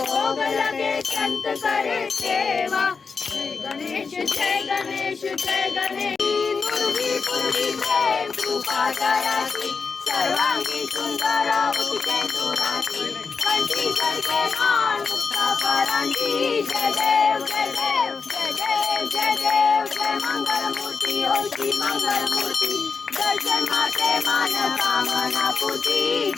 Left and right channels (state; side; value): quieter; right; 5.1 dB